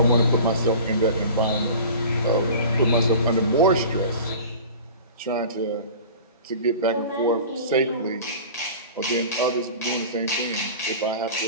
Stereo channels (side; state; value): both; inverted; correlation -0.39